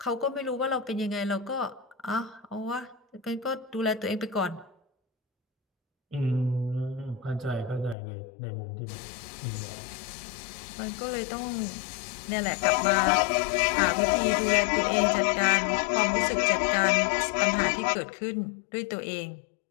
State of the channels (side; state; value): right; drops out; at 8.0 s